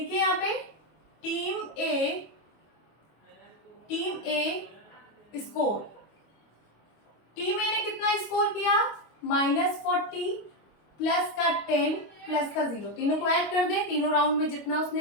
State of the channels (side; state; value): right; late; 25 ms